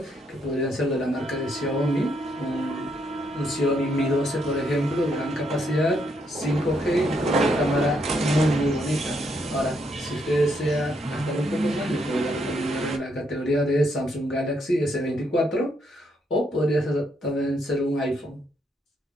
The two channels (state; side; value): normal; both; correlation 0.75